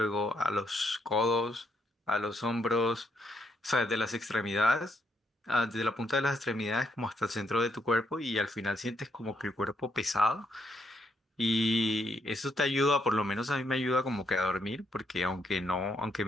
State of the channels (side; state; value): both; normal; correlation 0.76